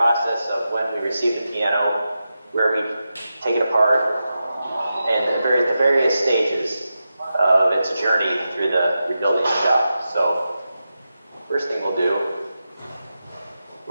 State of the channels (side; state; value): both; inverted; correlation -0.90